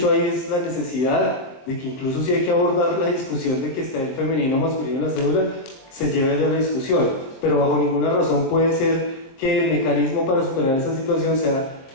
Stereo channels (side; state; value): right; late; 23 ms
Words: ahí es la necesidad de que incluso si hay que abordar la discusión de que está el femenino o masculino en la cédula, se lleve a la discusión, pero bajo ninguna razón puede ser que el mecanismo para superar esa situación sea